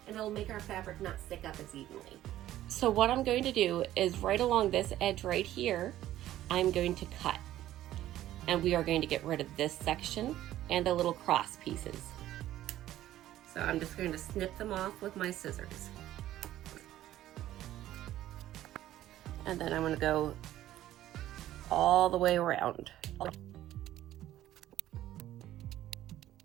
and it'll make our fabric not stick up as evenly. So what I'm going to do is right along this edge right here, I'm going to cut. And we are going to get rid of this section and the little cross pieces. So I'm just going to snip them off with my scissors. And then I'm going to go all the way around.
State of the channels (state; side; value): quieter; left; 13.6 dB